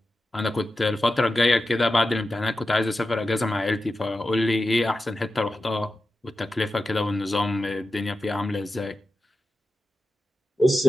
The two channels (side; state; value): both; normal; correlation 0.92